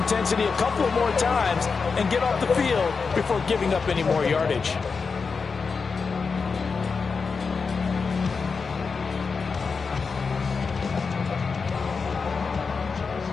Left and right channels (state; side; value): quieter; right; 5.0 dB